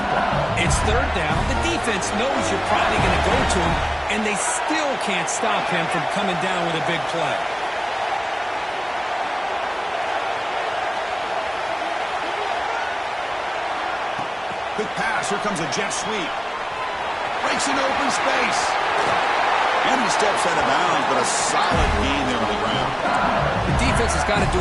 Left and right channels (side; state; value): both; identical; correlation 1.00